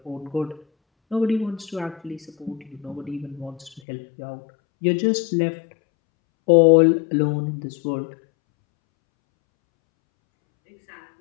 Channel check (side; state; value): right; drops out; at 3.8 s